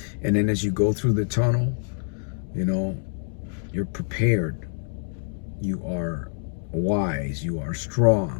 And then as you go through the tunnel, you know, you're prepared. You are wise. You are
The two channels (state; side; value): silent; right; 60 dB below the other